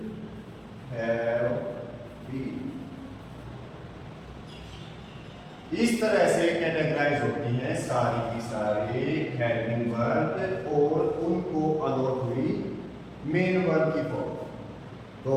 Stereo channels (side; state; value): both; identical; correlation 1.00